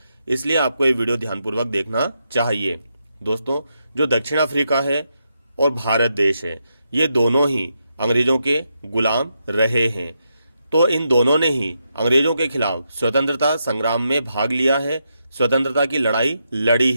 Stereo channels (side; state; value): both; inverted; correlation -0.83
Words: इसलिए आपको ये वीडियो ध्यानपूर्वक देखना चाहिए। दोस्तों, जो दक्षिण अफ्रीका है और भारत देश है, ये दोनों ही अंग्रेजों के गुलाम रहे हैं। तो इन दोनों ने ही अंग्रेजों के खिलाफ स्वतंत्रता संग्राम में भाग लिया है, स्वतंत्रता की लड़ाई लड़ी